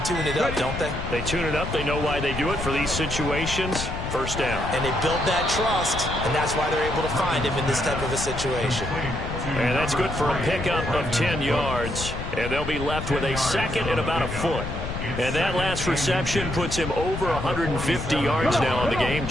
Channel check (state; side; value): noise; left; rumble, 6 dB below the sound